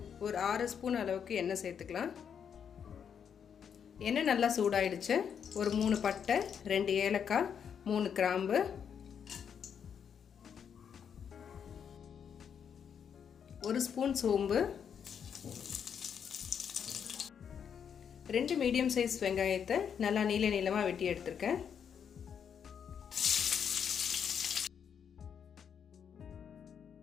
ஒரு 6 ஸ்பூன் அளவுக்கு எண்ணெய் சேர்த்துக்கலாம். எண்ணெய் நல்லா சூடாயிடுச்சு. ஒரு 3 பட்டை, 2 ஏலக்காய், 3 கிராம்பு, 1 ஸ்பூன் சோம்பு, 2 மீடியம் சைஸ் வெங்காயத்தை நல்லா நீளமாக வெட்டி எடுத்திருக்கேன்.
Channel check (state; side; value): quieter; right; 7.7 dB